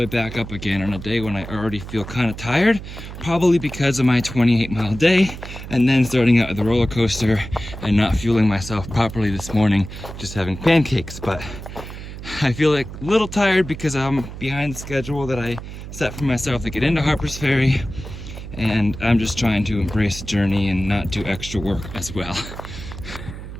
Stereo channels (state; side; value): noise; right; hum, 11 dB below the sound